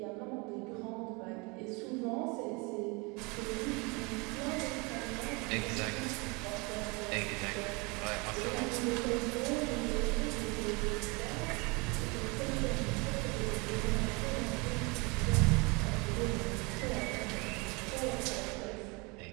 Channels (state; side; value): quieter; left; 27.6 dB